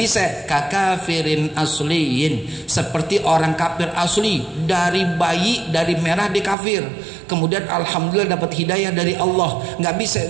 Kakafirin asliyin, seperti orang kafir asli, dari bayi, dari merah di kafir, kemudian alhamdulillah dapat hidayah dari Allah. Nggak bisa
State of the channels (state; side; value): drops out; left; at 6.6 s